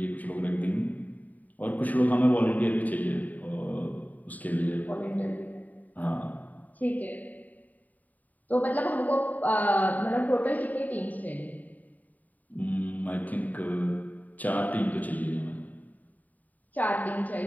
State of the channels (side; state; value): right; late; 0.077 ms